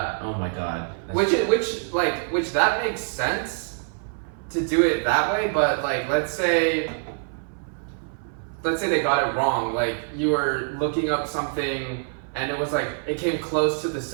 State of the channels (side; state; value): left; silent; 62 dB below the other